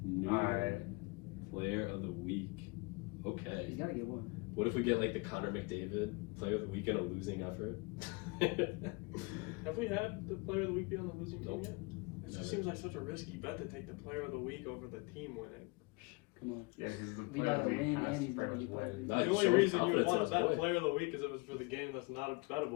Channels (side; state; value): right; quieter; 27.5 dB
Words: New Alright. player of the week. He's Okay. got to get one. What if we get like the Connor McDavid player of the week in a losing effort? Have we had the player of the week be on the losing Nope. team yet? It Never. just seems like such a risky bet to take the player of the week over the team winning. Come on. Yeah, because the We player of gotta the week win, has and to he's pretty gotta much be better. win. Nah, The he's only showing reason you would confidence want in to his bet boy. player of the week is if it's for the game that's not